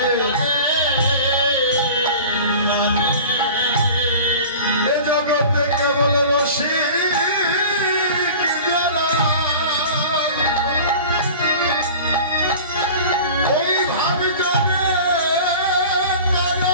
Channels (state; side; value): inverted; both; correlation -0.39